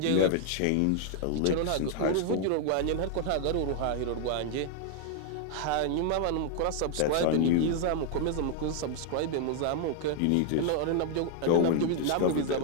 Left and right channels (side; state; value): both; different; correlation 0.00